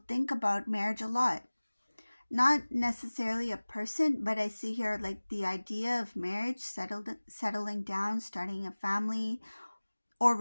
think about marriage a lot. Not necessarily a person, but I see here like the idea of marriage, settling down, starting a family, or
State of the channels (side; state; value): both; inverted; correlation -1.00